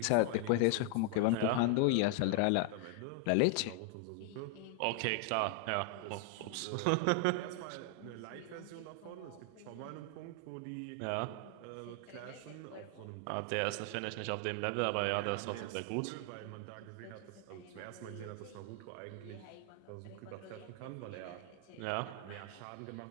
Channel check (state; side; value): different; both; correlation 0.00